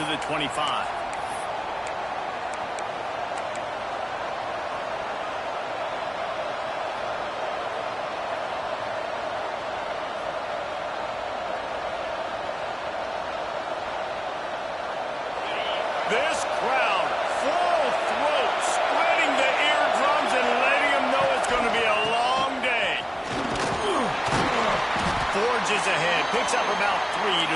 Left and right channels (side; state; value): both; identical; correlation 1.00